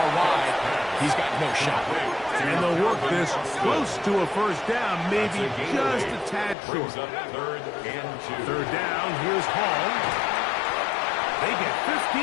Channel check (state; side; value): drops out; right; at 6.6 s